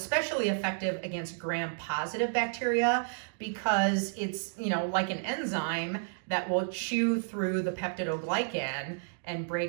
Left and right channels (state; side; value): silent; left; digital silence